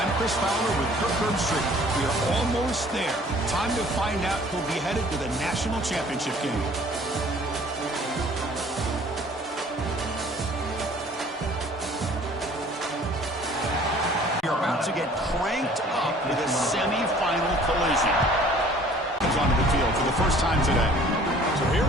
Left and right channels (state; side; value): normal; both; correlation 0.53